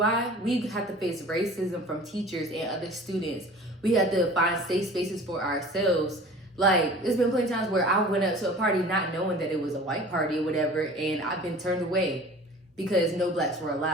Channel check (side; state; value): both; normal; correlation 0.42